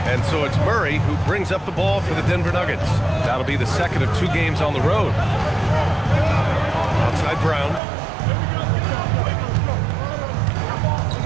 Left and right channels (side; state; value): left; drops out; at 7.8 s